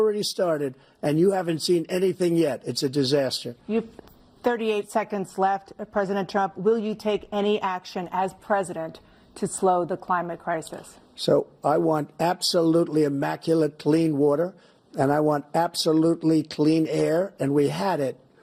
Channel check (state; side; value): identical; both; correlation 1.00